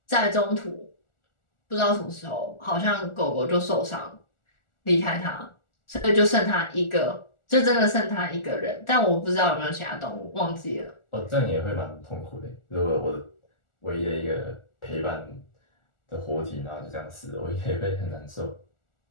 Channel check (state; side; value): late; right; 1.4 ms